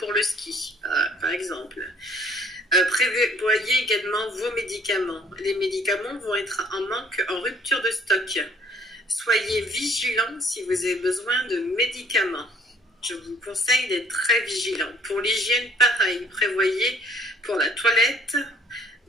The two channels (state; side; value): normal; both; correlation 0.58